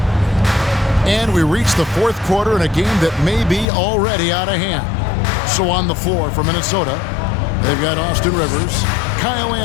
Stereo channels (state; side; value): drops out; right; at 3.7 s